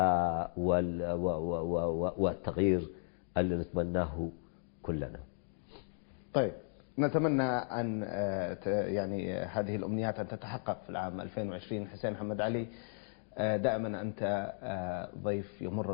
والتغيير اللي نتمناه كلنا. طيب، نتمنى أن يعني هذه الأمنيات أن تتحقق في العام 2020. حسين محمد علي، دائما أنت ضيف يمر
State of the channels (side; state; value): right; silent; digital silence